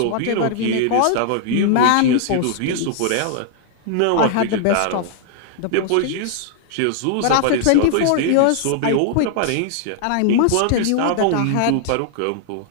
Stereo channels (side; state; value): both; different; correlation -0.01